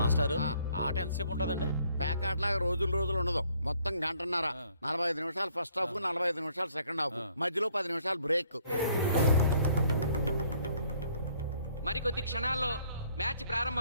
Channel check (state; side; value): inverted; both; correlation -0.64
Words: ఆట ఎంతసేపు ఉంటుందండి? ప్యాకాట్లాగా రోజులు ఉండదు. మొత్తం గంటన్నర. 45 నిమిషాలు ఫస్ట్ హాఫ్, 45 నిమిషాలు సెకండ్ హాఫ్, మధ్యలో 10 నిమిషాలు బ్రేక్. మరికొద్ది క్షణాల్లో మ్యాచ్